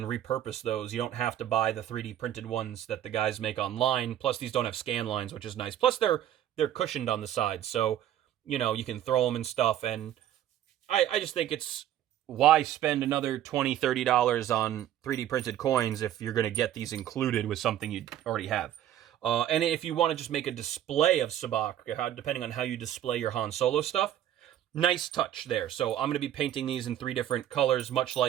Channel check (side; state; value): left; quieter; 11.6 dB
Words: repurpose those. You don't have to buy the 3D printed ones that the guys make online. Plus, these don't have scan lines, which is nice. Plus, they're cushioned on the sides, so you know you can throw them and stuff. And I just think it's, why spend another $20-$30 on 3D printed coins if you're going to get these included with something you already have. And if you want to just make a display of sabacc, depending on how you display your Han Solo stuff, nice touch there. So I'm going to be painting these in 3 different colors, much